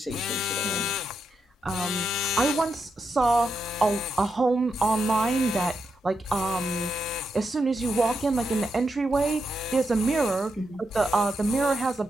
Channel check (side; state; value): both; normal; correlation 0.84